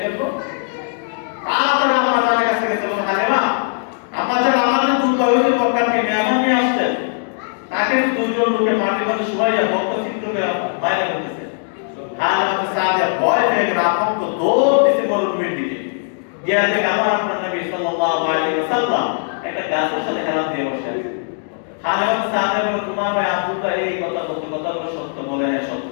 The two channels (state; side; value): silent; right; digital silence